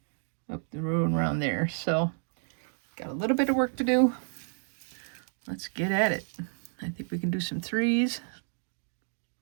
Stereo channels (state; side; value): silent; left; 57 dB below the other